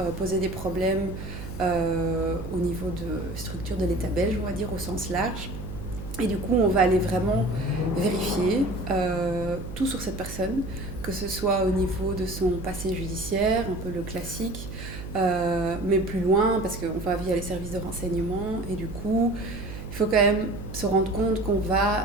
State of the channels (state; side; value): noise; right; hum, 10 dB below the sound